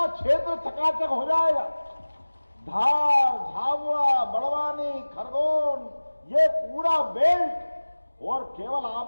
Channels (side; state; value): both; inverted; correlation -1.00